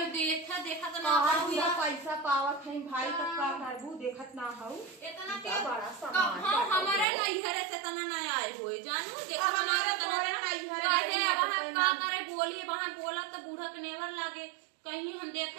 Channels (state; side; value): drops out; left; at 7.1 s